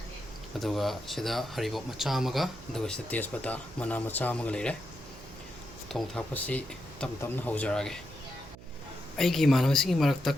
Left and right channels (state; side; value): noise; right; hum, 17 dB below the sound